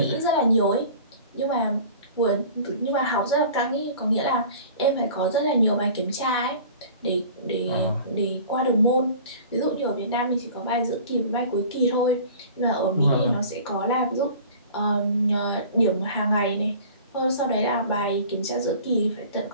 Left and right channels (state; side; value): inverted; both; correlation -0.44